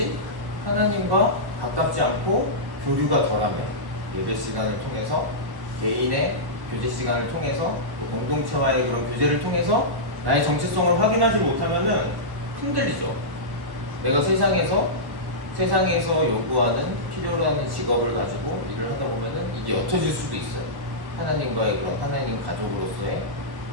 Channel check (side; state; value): left; late; 1.1 ms